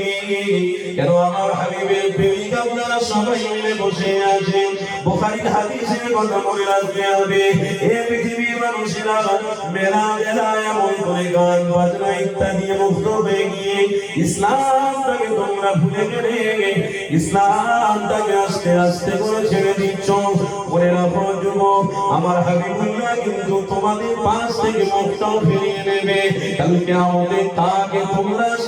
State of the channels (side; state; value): both; identical; correlation 1.00